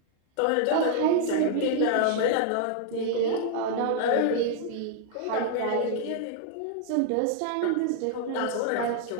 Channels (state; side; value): different; both; correlation -0.01